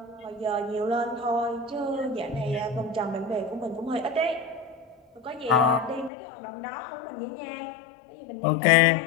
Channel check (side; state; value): right; drops out; at 6.1 s